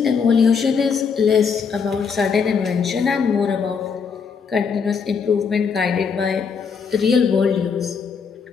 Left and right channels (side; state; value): right; quieter; 6.0 dB